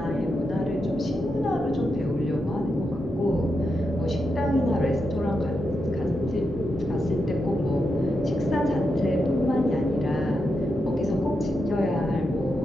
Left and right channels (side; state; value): left; noise; hum, 20 dB below the sound